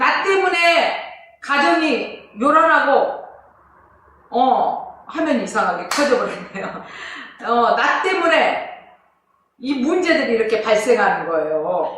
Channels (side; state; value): both; identical; correlation 1.00